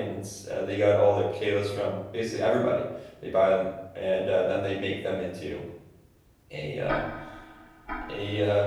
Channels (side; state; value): both; identical; correlation 1.00